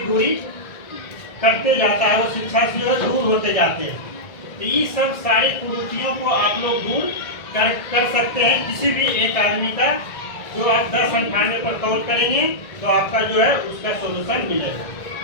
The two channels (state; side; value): late; right; 1.8 ms